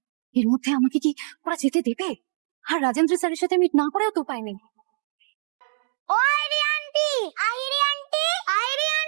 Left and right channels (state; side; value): silent; left; digital silence